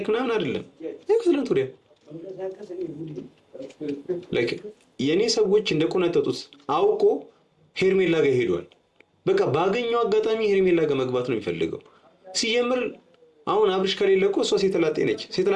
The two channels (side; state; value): both; identical; correlation 1.00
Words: ምናምን አይደለም። ትላንት ወዲያ ላይክ የኔ ሰዎች እንደቆነጠጡት አውቆ ሄርሜላ ጋር ሄዷል። በቃ ባገኘው አጋጣሚ ሄርሜላ ጋር መግባት ነው የሚፈልገው። ሲጀምር አሁን አብርሽ ከሌለ እኮ እሷ ሴተላጤ ነች።